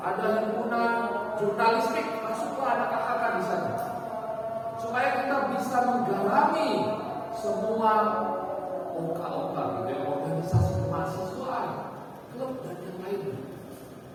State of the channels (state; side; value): identical; both; correlation 1.00